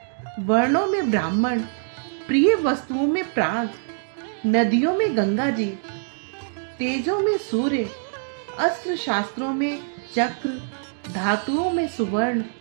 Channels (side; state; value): left; silent; digital silence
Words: वर्णों में ब्राह्मण, प्रिय वस्तुओं में प्राण, नदियों में गंगा जी, तेजों में सूर्य, अस्त्र शास्त्रों में चक्र, धातुओं में सुवर्ण,